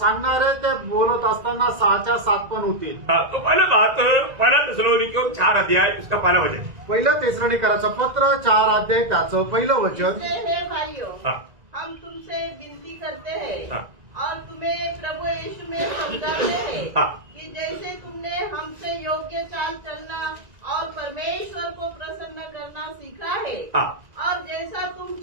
आहे. ते बोलत असताना 6च्या 7 पण होतील. तो पहला थिस्सलुनीकियों 4 अध्याय उसका पहला वचन। पहिलं तेसलोनिकराचं पत्र 4 अध्याय त्याचं पहिलं वचन. इसलिए हे भाइयों, हाँ। हम तुमसे विनती करते हैं हाँ। और तुम्हें प्रभु यीशु में समझाते हैं हाँ। कि जैसे तुमने हमसे योग्य चाल चलना और परमेश्वर को प्रसन्न करना सीखा है हाँ। और जैसा तुम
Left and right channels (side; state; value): left; late; 1.9 ms